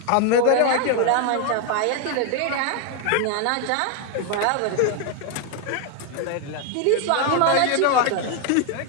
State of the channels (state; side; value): different; both; correlation 0.01